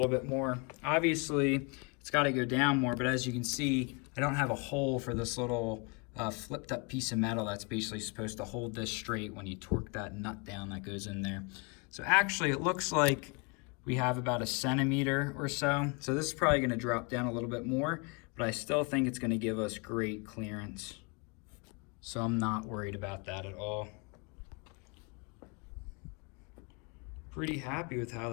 bit more. Obviously, it's gotta go down more, but as you can see, I don't have a hole for this little flipped up piece of metal that's basically supposed to hold this straight when you torque that nut down that goes in there. So actually, it looks like we have about a centimeter or so. So this is probably gonna drop down a little bit more, but I still think it's gonna give us great clearance. So I'm not worried about that at all. Pretty happy with how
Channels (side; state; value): right; quieter; 31.7 dB